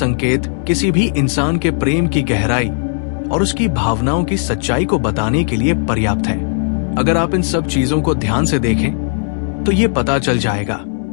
किसी भी इंसान के प्रेम की गहराई और उसकी भावनाओं की सच्चाई को बताने के लिए पर्याप्त है। अगर आप इन सब चीजों को ध्यान से देखें तो ये पता चल जाएगा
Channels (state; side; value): silent; right; 69 dB below the other